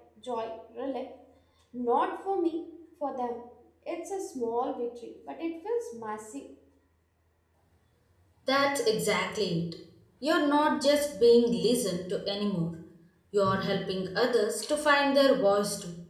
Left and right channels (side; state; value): both; identical; correlation 1.00